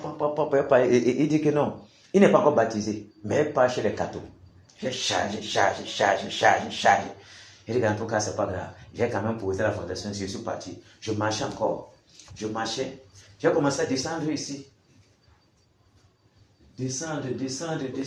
il dit que non, il n'est pas encore baptisé, mais pas chez les cathos. J'ai chargé. Il dit qu'en tout cas, c'est pas grave. J'ai quand même posé la fondation, je suis parti. Je marchais encore. J'ai commencé à descendre ici. Descendre.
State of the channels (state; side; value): identical; both; correlation 1.00